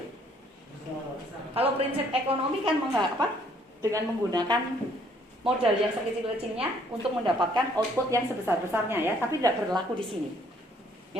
Kalau prinsip ekonomi kan dengan menggunakan modal yang sekecil-kecilnya untuk mendapatkan output yang sebesar-besarnya ya, tapi tidak berlaku di sini.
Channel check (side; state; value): both; normal; correlation 0.64